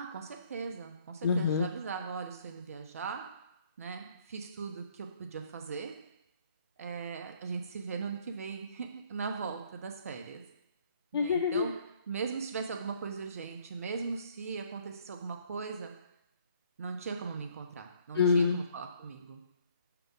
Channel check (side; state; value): both; inverted; correlation -0.63